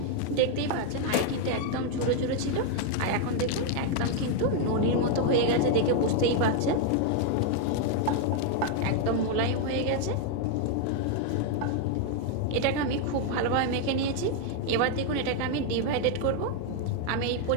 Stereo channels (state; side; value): different; both; correlation 0.00